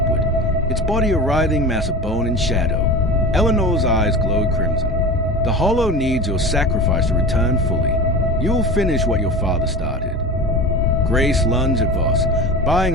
its body a writhing mass of bone and shadow. Eleanor's eyes glowed crimson. The Hollow needs your sacrifice to return fully. You'll finish what your father started. Grace lunged at Voss, buying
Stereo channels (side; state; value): both; normal; correlation 0.31